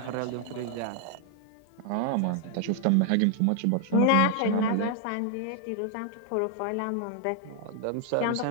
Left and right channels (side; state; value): both; different; correlation 0.00